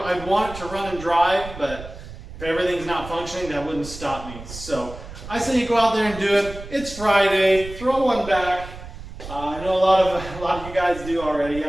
want it to run and drive, but if everything's not functioning, that wouldn't stop me. So I say you go out there and do it. It's Friday. Throw one back. I know a lot of you guys do already. You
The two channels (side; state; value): right; noise; rumble, 13 dB below the sound